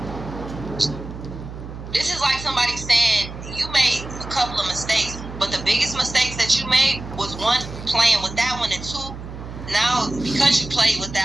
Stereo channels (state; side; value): noise; right; hum, 11 dB below the sound